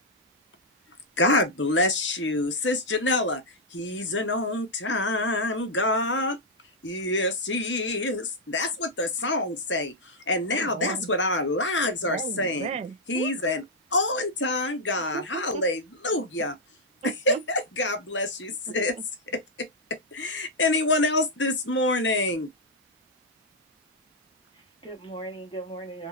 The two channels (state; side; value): normal; both; correlation -0.04